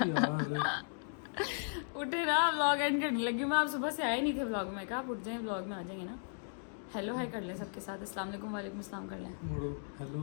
उठे ना, व्लॉग एंड करने लगी मैं। आप सुबह से आए नहीं थे व्लॉग में, कहा आप उठ जाएं, व्लॉग में आ जाएंगे ना। हेलो हाय कर लें सबके साथ, अस्सलाम वालेकुम, वालेकुम अस्सलाम कर लें। मोड़ो हेलो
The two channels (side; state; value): right; silent; digital silence